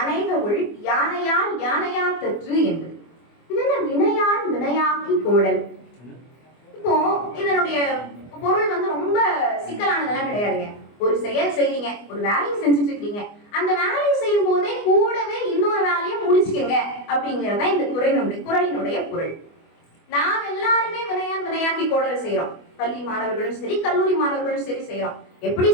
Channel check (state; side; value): late; right; 24 ms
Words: ஒள் யானையால் யானையா தற்று என்பது. இது என்ன வினையான் வினையாக்கி கோடல்? இப்போ இதனுடைய பொருள் ரொம்ப சிக்கலானதெல்லாம் கிடையாதுங்க. ஒரு செயல் செய்றீங்க, ஒரு வேலையை செஞ்சுட்டு இருக்கீங்க, அந்த வேலையை செய்யும் போதே கூடவே இன்னொரு வேலையை முடிச்சுக்கங்க அப்படிங்கறத இந்த குறளினுடைய பொருள். நாம் எல்லாருமே வினையான் வினையாக்கி கோடல் செய்யறோம். பள்ளி மாணவர்களும் சரி, கல்லூரி மாணவர்களும் சரி செய்யறோம். எப்படி